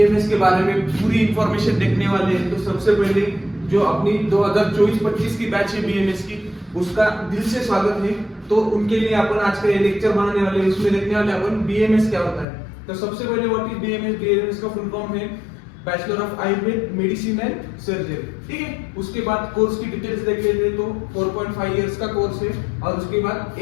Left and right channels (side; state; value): right; drops out; at 12.5 s